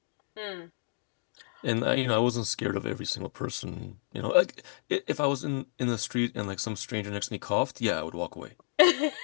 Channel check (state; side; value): silent; right; digital silence